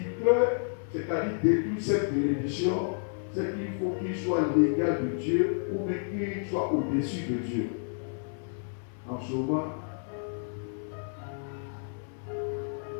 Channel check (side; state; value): right; silent; 58 dB below the other